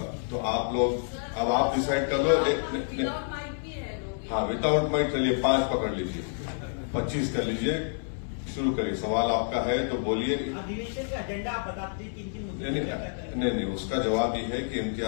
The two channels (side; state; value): right; silent; digital silence